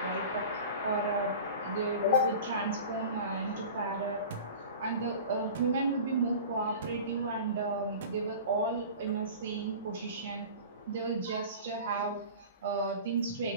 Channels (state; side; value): inverted; both; correlation -0.37